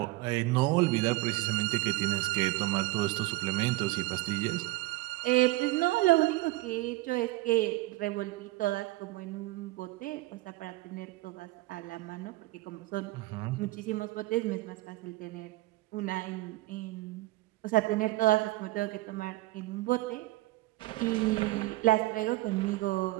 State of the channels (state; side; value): quieter; left; 19.5 dB